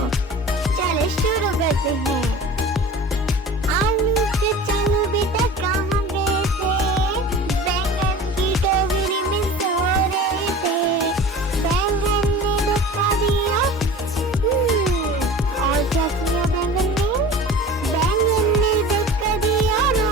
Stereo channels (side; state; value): both; normal; correlation 0.38